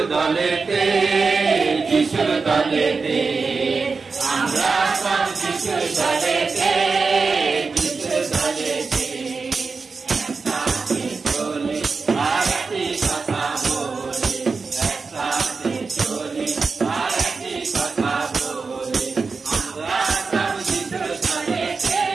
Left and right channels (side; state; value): left; quieter; 4.5 dB